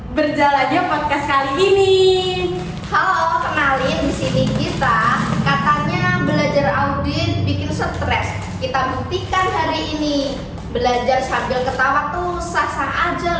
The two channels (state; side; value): identical; both; correlation 1.00